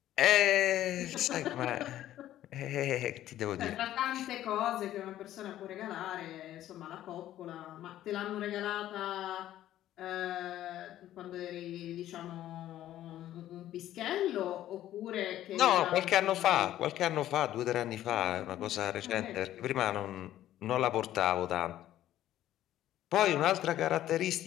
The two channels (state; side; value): quieter; right; 13.0 dB